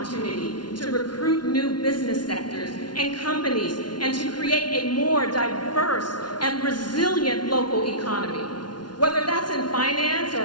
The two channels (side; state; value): right; late; 0.70 ms